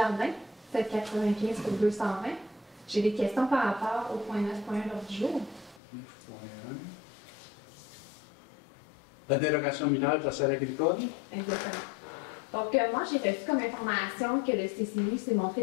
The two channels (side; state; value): right; drops out; at 5.8 s